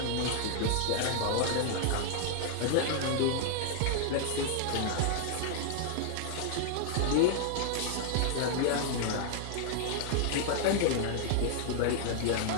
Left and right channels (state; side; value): different; both; correlation 0.00